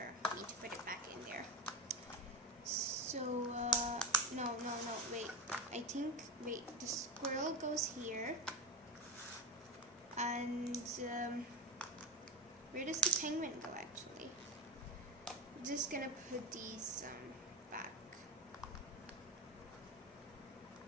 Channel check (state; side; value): normal; both; correlation 0.15